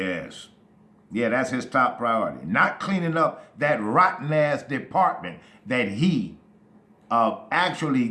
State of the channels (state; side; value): identical; both; correlation 1.00